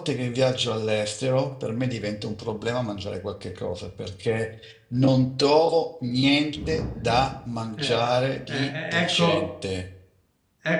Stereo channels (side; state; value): both; identical; correlation 1.00